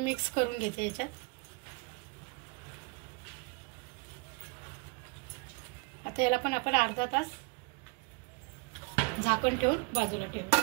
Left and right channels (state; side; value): quieter; left; 28.4 dB